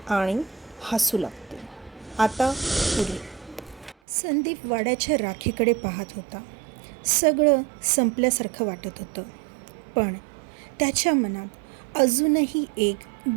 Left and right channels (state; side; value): drops out; left; at 4.0 s